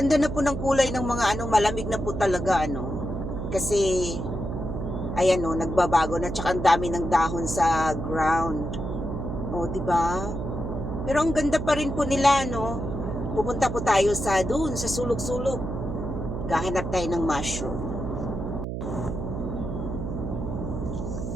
na po ng kulay ng mga malamig na po talaga Kasi ayan nagbabago na, tsaka ang dami ng dahon sa ground. O, di ba? Pero ang ganda pa rin po nila, Pupunta po tayo sa sulok-sulok. Gahanap tayo ng mushroom.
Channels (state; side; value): noise; right; hum, 4 dB below the sound